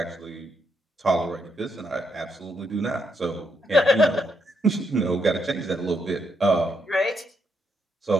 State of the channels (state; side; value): normal; both; correlation 0.78